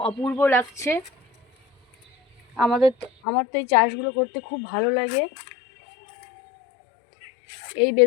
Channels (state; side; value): drops out; right; at 3.1 s